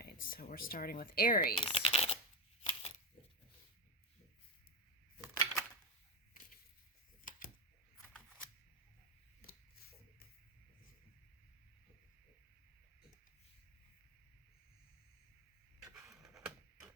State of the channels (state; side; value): normal; both; correlation 0.12